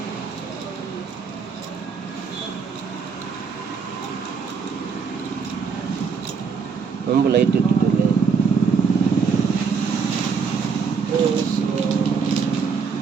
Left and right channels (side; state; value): left; quieter; 5.6 dB